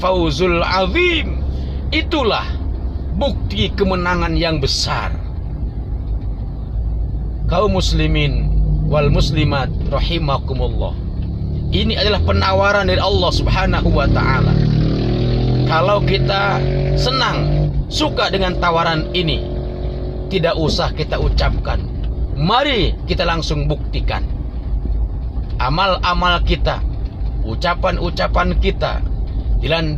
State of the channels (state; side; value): identical; both; correlation 1.00